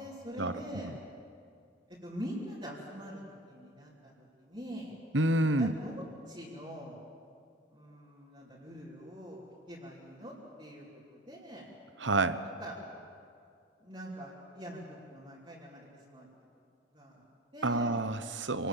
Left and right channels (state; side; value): normal; both; correlation 0.33